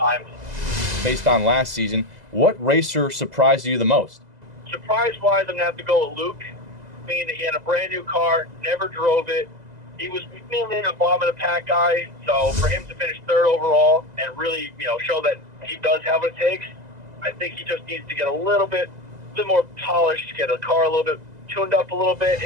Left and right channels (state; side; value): late; left; 2.0 ms